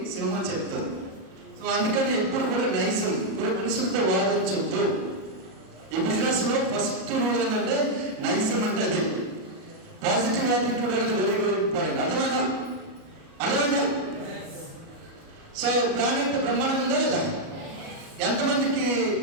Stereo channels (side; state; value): left; late; 37 ms